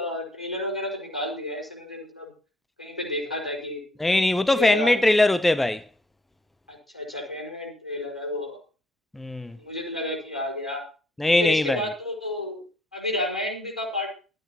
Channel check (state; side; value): normal; both; correlation 0.71